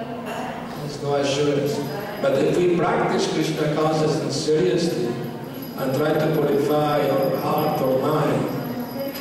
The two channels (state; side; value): identical; both; correlation 1.00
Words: no assurance. But if we practice Krishna consciousness seriously and try to purify our heart or mind